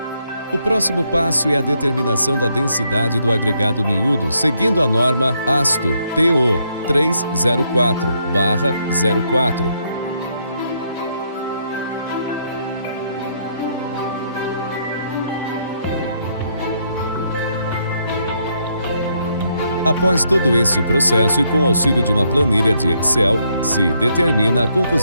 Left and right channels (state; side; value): inverted; both; correlation -0.74